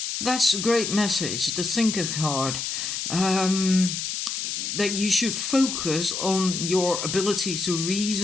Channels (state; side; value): noise; left; hiss, 3 dB below the sound